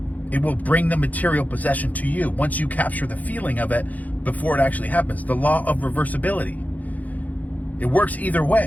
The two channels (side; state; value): right; late; 0.078 ms